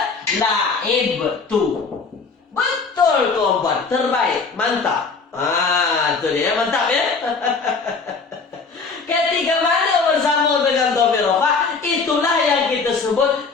la'ib. betul. Betul tuan-puan, terbaik, mantap. Itu dia, mantap ya. Ketika mana bersambung dengan dhamir rafa, itulah yang kita sebut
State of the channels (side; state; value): right; quieter; 4.6 dB